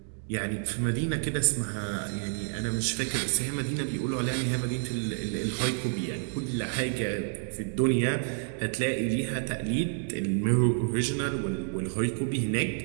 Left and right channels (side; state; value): left; silent; 58 dB below the other